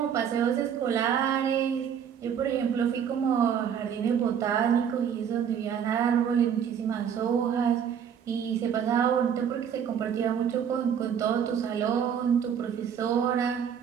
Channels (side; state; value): left; quieter; 8.1 dB